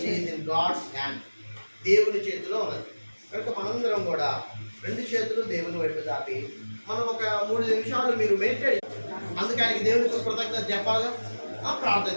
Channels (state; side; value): inverted; both; correlation -1.00